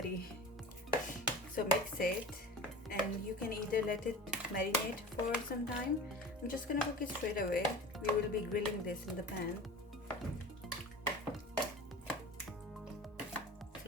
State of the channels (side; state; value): both; normal; correlation 0.36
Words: So mix it, and you can either let it marinate for some time. I'm just gonna cook it straight away. We will be grilling this in the pan.